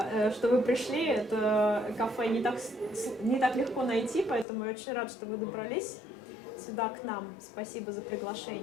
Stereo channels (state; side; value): drops out; right; at 4.5 s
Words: что вы пришли. Это кафе не так легко найти, поэтому я очень рад, что вы добрались сюда к нам. Спасибо за